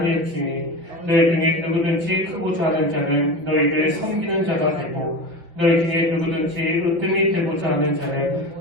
너희 중에 누구든지 크고자 하는 자는 너희를 섬기는 자가 되고 너희 중에 누구든지 으뜸이 되고자 하는 자는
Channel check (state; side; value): late; left; 5.8 ms